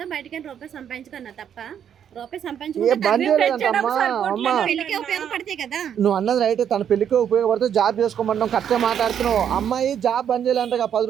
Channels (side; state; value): left; quieter; 8.9 dB